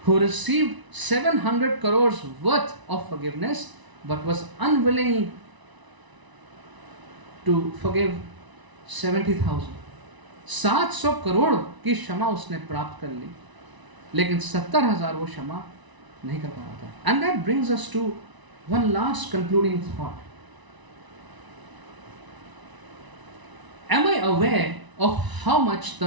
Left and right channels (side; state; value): left; late; 1.0 ms